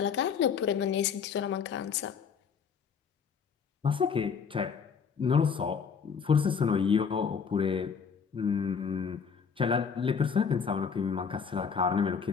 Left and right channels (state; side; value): quieter; right; 6.3 dB